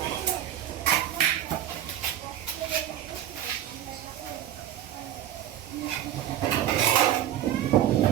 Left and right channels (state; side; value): quieter; left; 11.4 dB